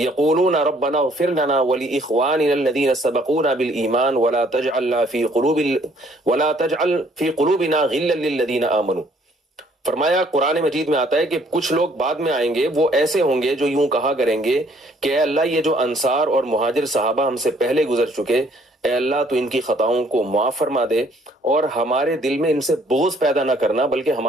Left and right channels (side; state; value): both; normal; correlation 0.62